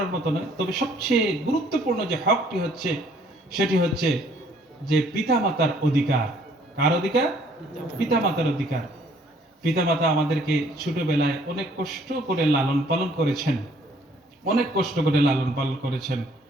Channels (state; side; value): normal; both; correlation 0.61